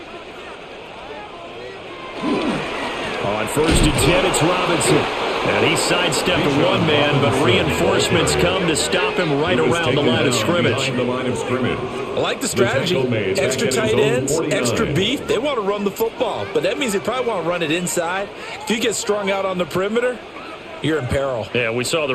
On 1st and 10, it's Robinson. And he sidestepped a one-man, but reinforcements come to stop him right around the line of scrimmage. I like the strategy. Extra tight ends, extra beef. They want to run the football, but that means they probably want to run it inside. If you get strung out on the perimeter, you're in peril. Yeah, we saw the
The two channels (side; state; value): both; identical; correlation 1.00